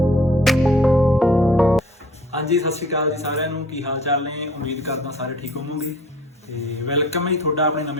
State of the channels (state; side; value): normal; both; correlation 0.51